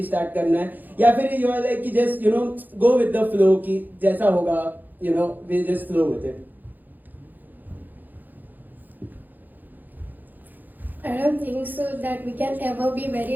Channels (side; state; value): left; late; 0.086 ms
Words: start करना है, या फिर you are like कि just go with the flow कि जैसा होगा we'll just flow with it? I don't think so that we can ever be